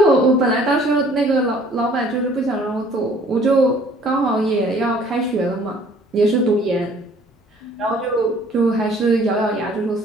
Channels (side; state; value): both; normal; correlation 0.56